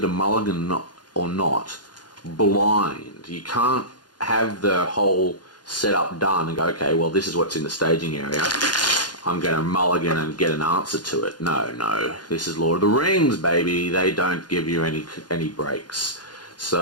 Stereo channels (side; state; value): right; late; 0.70 ms